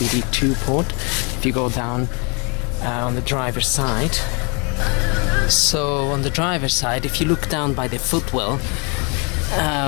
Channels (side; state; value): right; quieter; 33.2 dB